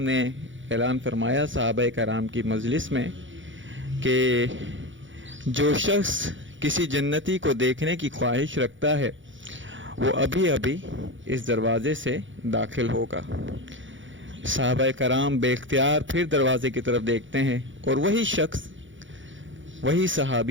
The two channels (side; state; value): left; late; 0.56 ms